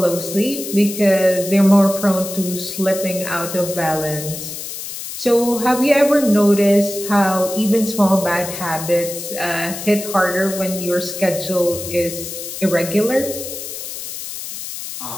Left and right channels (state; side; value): noise; left; hiss, 8 dB below the sound